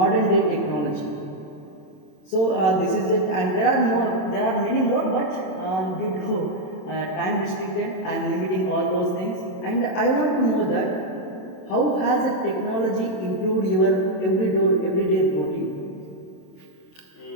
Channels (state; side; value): late; right; 27 ms